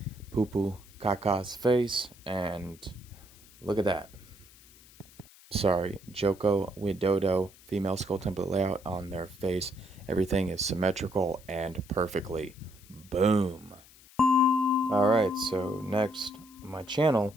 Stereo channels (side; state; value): left; noise; hiss, 24 dB below the sound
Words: Pupu Kaka's face, and look at that. Sorry, Joko Widodo female skull template layout on their face. Everything is symmetrical and perfectly. Boom. Alright, so next on my